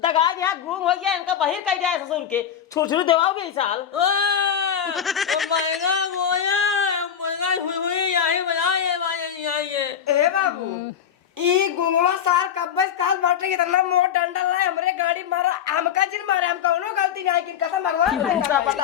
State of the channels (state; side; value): quieter; right; 8.7 dB